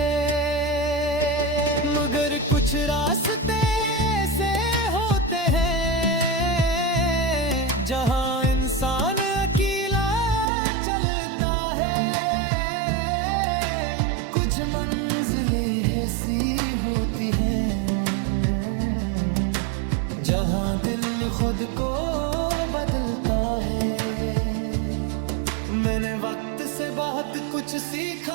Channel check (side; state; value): left; drops out; at 10.5 s